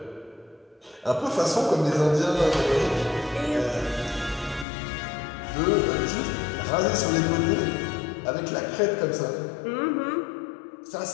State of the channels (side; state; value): right; drops out; at 4.7 s